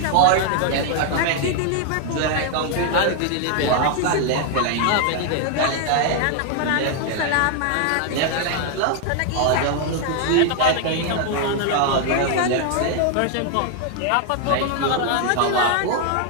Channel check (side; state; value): both; different; correlation 0.00